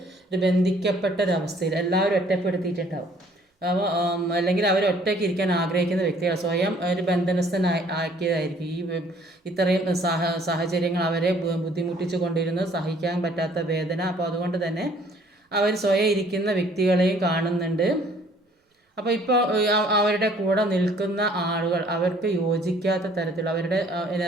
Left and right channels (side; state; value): both; normal; correlation 0.58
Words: ഒരു ബന്ധിക്കപ്പെട്ടൊരവസ്ഥയിൽ എല്ലാവരും ഒറ്റപ്പെടുത്തിയിട്ടുണ്ടാവും. അപ്പോൾ അല്ലെങ്കിൽ അവർ ഒറ്റയ്ക്ക് ഇരിക്കാൻ ആഗ്രഹിക്കുന്ന വ്യക്തികൾ സ്വയം ഒരു ബന്ധനസ്ഥനാക്കിയതായിരിക്കും. ഇത്രയും സാഹചര്യങ്ങൾ അവരെ ബുദ്ധിമുട്ടിച്ചു കൊണ്ടിരുന്നത്, സഹിക്കാൻ പറ്റാത്ത വേദന. അപ്പോൾ അതുകൊണ്ട് തന്നെ അവർ സ്വയം ഇരിക്കുന്ന വ്യക്തികളെയും കാണുന്നുണ്ട്. അപ്പോൾ ഇപ്പോൾ അവരുടെ കൂടെ നിൽക്കുന്ന ആളുകൾ അവർക്ക് യോജിക്കാത്ത തരത്തിൽ അവരുടെ